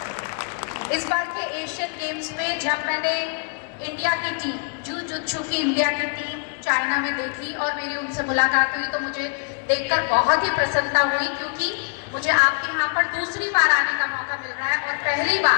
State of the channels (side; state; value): right; quieter; 38.0 dB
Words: इस बार के एशियन गेम्स में जब मैंने इंडिया की टीम, जूजुत्सु की इंडिया की टीम चाइना में देखी और मेरी उनसे मुलाकात हुई तो मुझे देखकर बहुत ही प्रसन्नता हुई, क्योंकि मुझे आपके यहाँ पर दूसरी बार आने का मौका मिल रहा है। और पहली